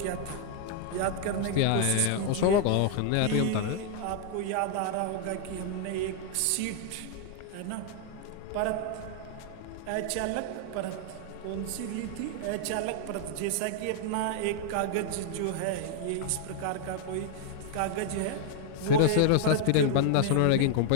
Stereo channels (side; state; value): both; different; correlation 0.00